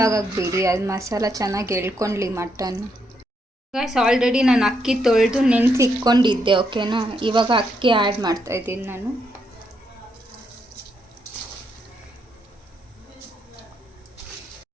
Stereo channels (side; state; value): both; normal; correlation 0.78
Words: ಆಗೋಕ್ಕೆ ಬಿಡಿ. ಅದು ಮಸಾಲ ಚೆನ್ನಾಗಿ ಎಳ್ಕೊಳ್ಳಿ ಮಟನ್. ಗೈಸ್, ಆಲ್ರೆಡಿ ನಾನು ಅಕ್ಕಿ ತೊಳೆದು ನೆನೆಸಿಟ್ಕೊಂಡಿದ್ದೆ, ಓಕೆನಾ? ಇವಾಗ ಅಕ್ಕಿ ಆ್ಯಡ್ ಮಾಡ್ತಾಯಿದ್ದೀನಿ ನಾನು.